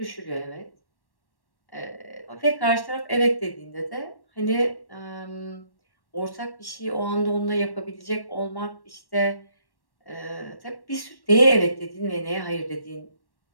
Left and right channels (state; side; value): late; right; 1.1 ms